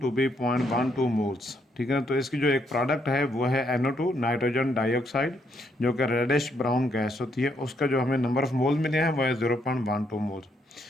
to be 0.12 moles. ठीक है, तो इसकी जो एक प्रोडक्ट है वो है NO2 नाइट्रोजन डाइऑक्साइड, जो कि रेडिश ब्राउन गैस होती है। उसका जो हमें नंबर ऑफ मोल मिले हैं वो है 0.12 मोल्स।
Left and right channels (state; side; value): normal; both; correlation 0.74